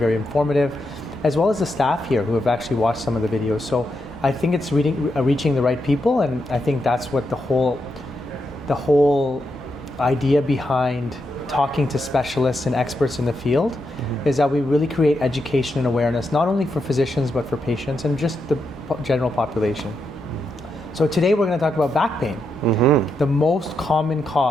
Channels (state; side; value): normal; both; correlation 0.83